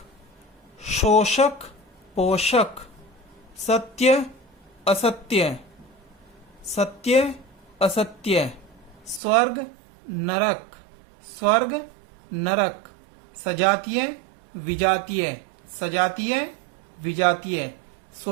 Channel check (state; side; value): drops out; left; at 9.2 s